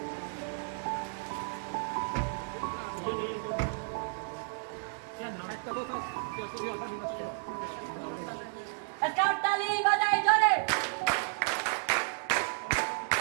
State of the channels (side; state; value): left; silent; digital silence